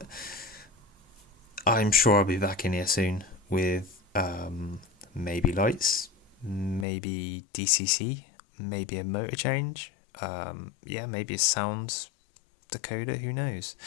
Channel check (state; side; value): drops out; right; at 6.9 s